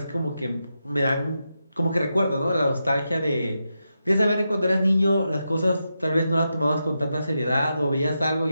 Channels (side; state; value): both; inverted; correlation -0.87